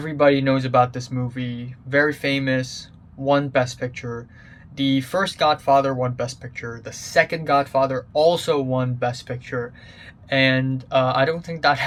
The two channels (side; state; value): both; identical; correlation 1.00